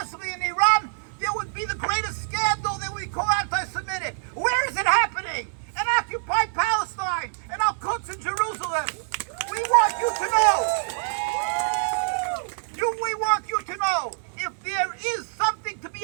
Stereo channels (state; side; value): silent; left; digital silence